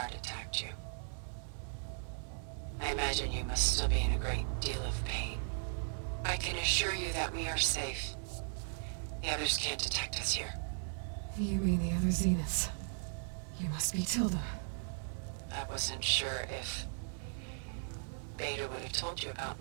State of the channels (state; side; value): silent; left; digital silence